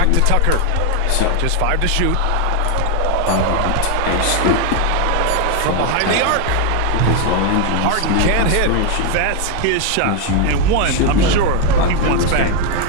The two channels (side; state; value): both; different; correlation 0.01